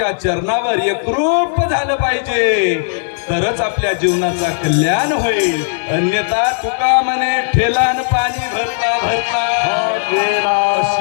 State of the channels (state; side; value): silent; right; digital silence